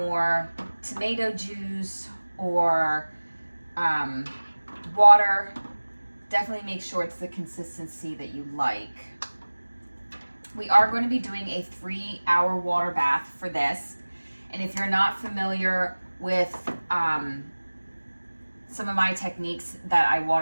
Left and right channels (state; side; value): inverted; both; correlation -1.00